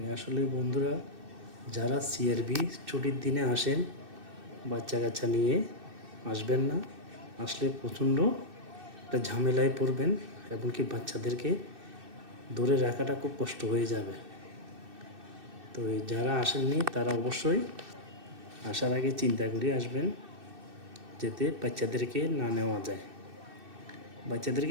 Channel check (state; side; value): late; left; 2.6 ms